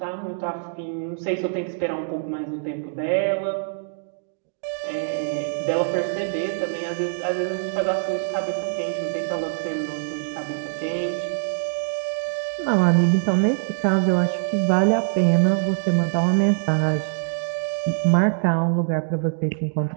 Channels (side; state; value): left; silent; digital silence